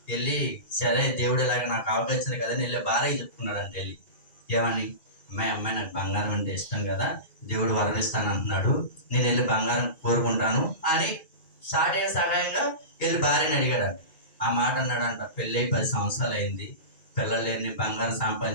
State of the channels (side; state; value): right; late; 2.4 ms